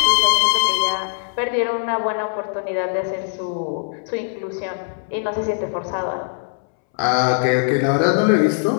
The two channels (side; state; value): right; silent; 65 dB below the other